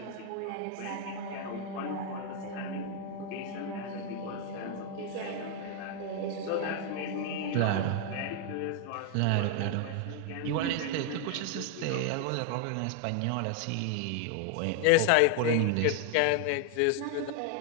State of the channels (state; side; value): different; both; correlation 0.00